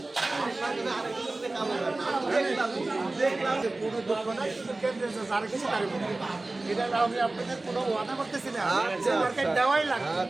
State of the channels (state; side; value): quieter; left; 3.0 dB